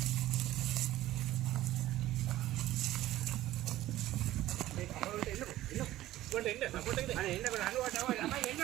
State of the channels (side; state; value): left; quieter; 15.0 dB